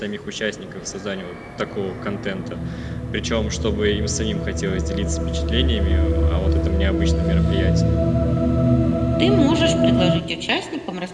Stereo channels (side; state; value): both; identical; correlation 1.00